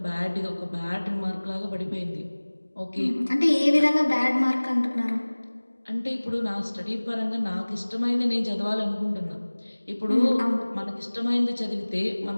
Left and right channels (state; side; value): inverted; both; correlation -1.00